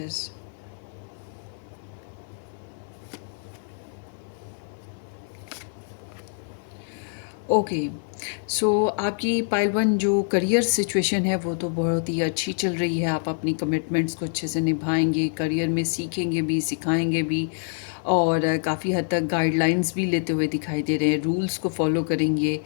Okay, so आपकी पाइल वन जो करियर सिचुएशन है वो तो बहुत ही अच्छी चल रही है। आप अपनी कमिटमेंट्स को अच्छे से निभाएंगे, करियर में सीखेंगे भी, सिखाएंगे भी, और काफ़ी हद तक गाइडलाइंस भी लेते हुए दिखाई दे रहे हैं, रूल्स को फॉलो करेंगे,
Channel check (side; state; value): right; silent; 60 dB below the other